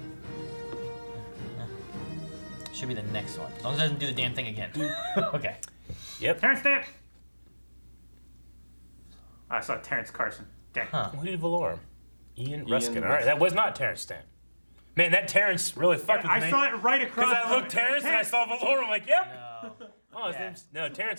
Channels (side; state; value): both; inverted; correlation -1.00